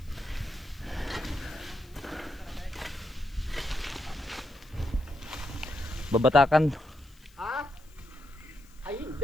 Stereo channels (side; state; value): left; noise; hiss, 28 dB below the sound